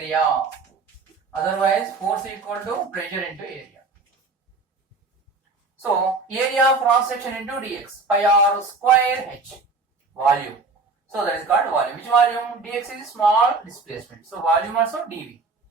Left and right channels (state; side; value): quieter; left; 3.9 dB